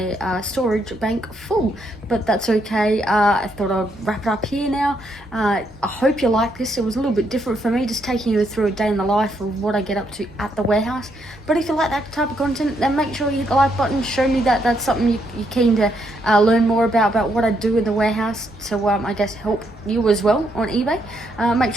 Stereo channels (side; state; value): both; normal; correlation 0.76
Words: storage bank full, but that's okay. I thought I'd wrap it up here now. I hope you like this. It was a little bit different for me, just taking you through a day in the life of what I get up to at the warehouse. But if you like that type of content, then make sure you hit the like button. Show me that that's something you're keen to learn more about what I do in the warehouse, to I guess help you as well on eBay. Make